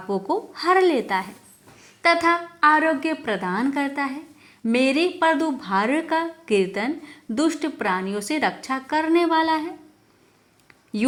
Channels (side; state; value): both; identical; correlation 1.00